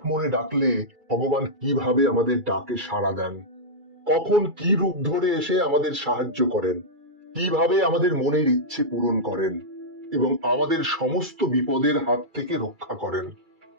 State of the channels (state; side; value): late; left; 2.3 ms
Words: মনে ডাকলে ভগবান কিভাবে আমাদের ডাকে সাড়া দেন, কখন কি রূপ ধরে এসে আমাদের সাহায্য করেন, কিভাবে আমাদের মনের ইচ্ছে পূরণ করেন এবং আমাদের সমস্ত বিপদের হাত থেকে রক্ষা করেন।